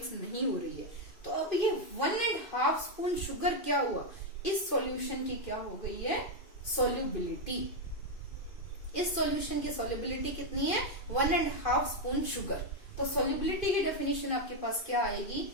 नहीं हो रही है, तो अब ये 1.5 स्पून शुगर क्या हुआ, इस सॉल्यूशन की क्या हो गई है, सॉल्युबिलिटी। इस सॉल्यूशन की सॉल्युबिलिटी कितनी है, 1.5 स्पून शुगर। तो सॉल्युबिलिटी की डेफिनेशन आपके पास क्या आएगी,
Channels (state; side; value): late; right; 2.5 ms